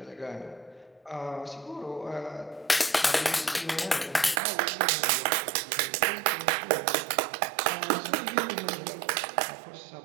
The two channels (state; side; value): drops out; left; at 4.4 s